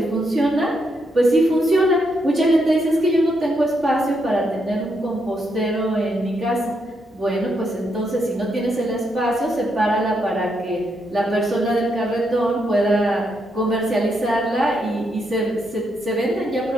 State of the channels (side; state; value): both; normal; correlation 0.79